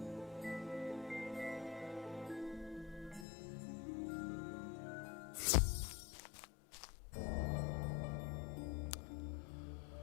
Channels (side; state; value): right; drops out; at 3.2 s